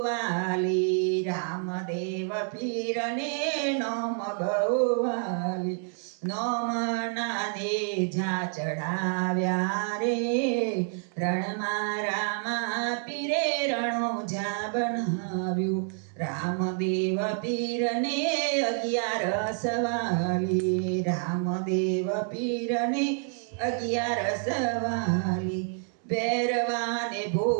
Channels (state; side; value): silent; left; 56 dB below the other